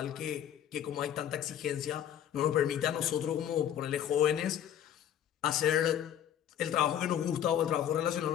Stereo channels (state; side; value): quieter; right; 10.3 dB